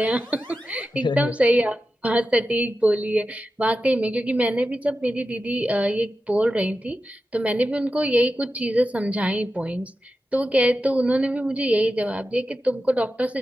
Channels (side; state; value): both; normal; correlation 0.92